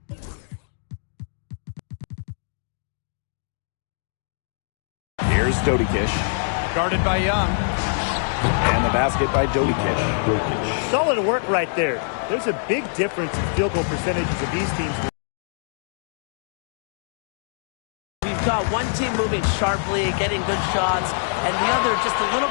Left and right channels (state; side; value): silent; right; digital silence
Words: Here's Dodikish. Guarded by Young. And the basket by Dodikish. Solid work right there. There's a big difference in field goal percentages of these teams. We've got one team moving sharply, getting good shots, and the other just a little